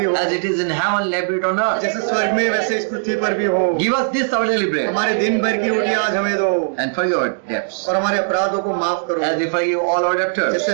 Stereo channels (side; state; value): left; silent; digital silence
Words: हो, As it is in heaven, let it on earth. जैसे स्वर्ग में वैसे इस पृथ्वी पर भी हो। Give us this our daily bread. हमारे दिन भर की रोटी आज हमें दो And forgive our debts, और हमारे अपराधों को माफ करो as we forgive all our debtors. जैसे